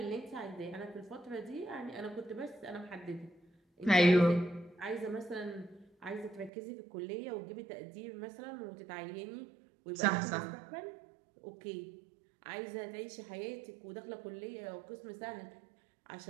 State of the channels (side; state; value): left; drops out; at 6.5 s